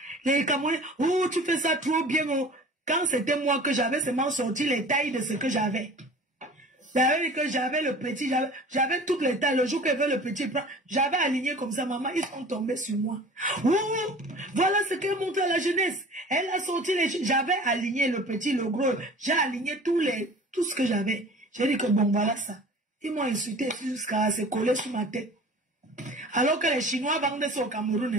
Les Camerounais. Ou tu fais ça trop bien. Oh. Quand c'était moi que j'avais seulement sorti les tailles de ce que j'avais. J'avais dit que j'avais le petit, j'avais toutes les tailles. Le jour qu'elle veut le petit, j'avais aligné comme ça, maman, ils sont tombés sur moi. Ouh, voilà ce qu'elle montre à la jeunesse. Elle a sorti j'avais aligné le petit, le gros. J'ai aligné tout ce que j'avais. J'ai dit que bon, voilà ça. Ils m'ont insulté jusqu'à se coller sur ma tête. Alors que les Chinois vendent ça au Cameroun.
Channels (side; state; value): both; normal; correlation 0.43